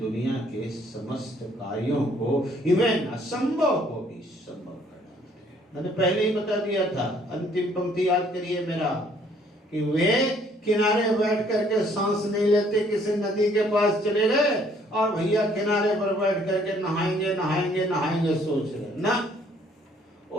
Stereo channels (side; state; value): both; normal; correlation 0.62